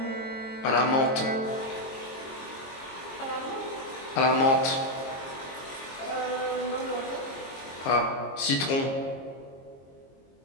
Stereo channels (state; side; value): late; right; 22 ms